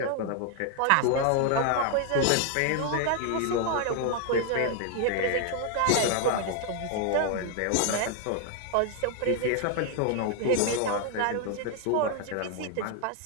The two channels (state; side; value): different; both; correlation 0.00